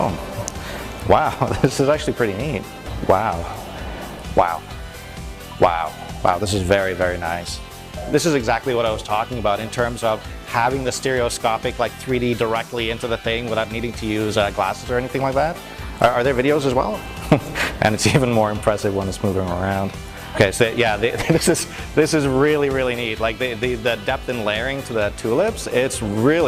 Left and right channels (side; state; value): both; identical; correlation 1.00